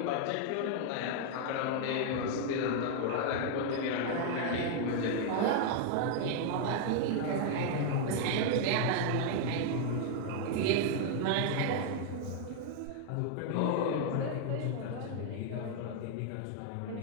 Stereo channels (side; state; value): both; different; correlation 0.00